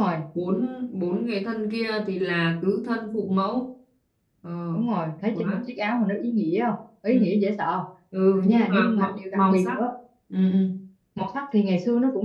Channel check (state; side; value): identical; both; correlation 1.00